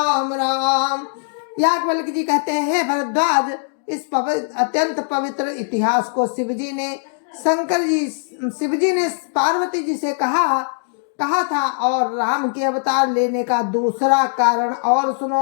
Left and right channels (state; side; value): silent; right; digital silence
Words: राम। याज्ञवल्क्य जी कहते हैं, भरद्वाज, इस अत्यंत पवित्र इतिहास को शिवजी ने पार्वती जी से कहा था। और राम के अवतार लेने का दूसरा कारण और